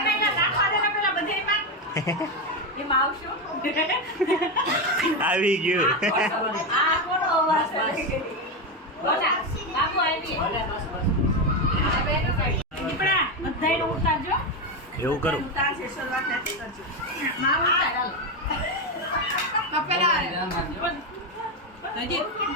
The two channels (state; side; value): normal; both; correlation 0.11